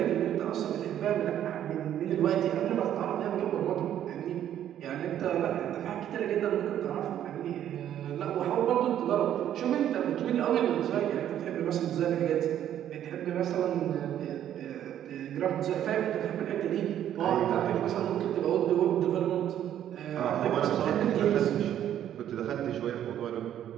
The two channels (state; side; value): quieter; left; 10.8 dB